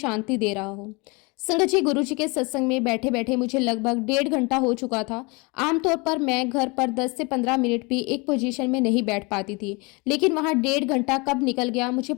दे रहा हो। संगत जी, गुरुजी के सत्संग में बैठे बैठे मुझे लगभग 1.5 घंटा हो चुका था। आमतौर पर मैं घर पर 10 से 15 मिनट भी एक पोजीशन में नहीं बैठ पाती थी, लेकिन वहां 1.5 घंटा कब निकल गया मुझे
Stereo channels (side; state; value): right; quieter; 28.1 dB